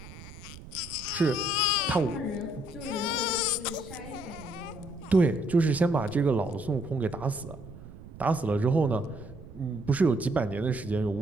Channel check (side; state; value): right; noise; rumble, 16 dB below the sound